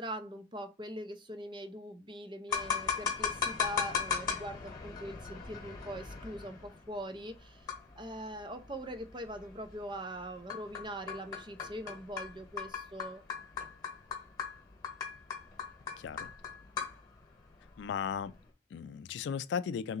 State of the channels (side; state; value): right; quieter; 4.3 dB